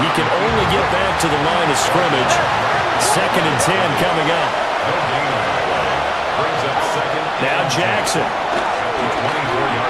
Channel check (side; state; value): both; identical; correlation 1.00